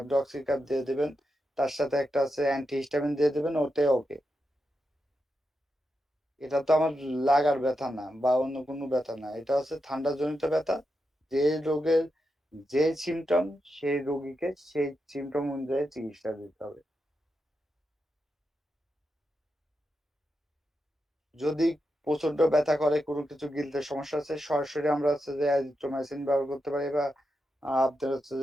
দিয়ে দেবেন, তার সাথে একটা আছে অ্যান্টিহিস্টামিন দিয়ে দেবেন, ওতে ওকে। এটা তো আমার লাগার ব্যথা না বা অন্য কোনো ব্যথা না, এটা হচ্ছে ঠান্ডাজনিত ব্যথা। যে রোগের যে সিমটম, সেই রোগীকে সেই সিমটম অনুযায়ী চিকিৎসা দিতে হবে। যদি প্রচন্ড ব্যথা করে, কোনো কিছু গিলতে সমস্যা আছে, সরাসরি আমরা হচ্ছে যে অ্যাজিথ্রোমাইসিন ব্যবহার করতে পারি, বা আপনার হচ্ছে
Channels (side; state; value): both; normal; correlation 0.87